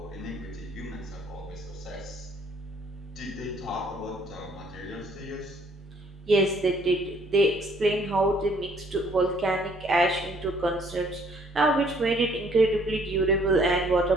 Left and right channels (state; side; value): normal; both; correlation 0.62